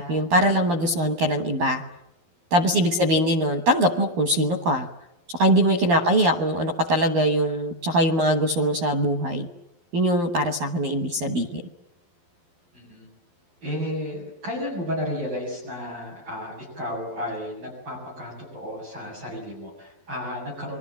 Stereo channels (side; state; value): left; late; 12 ms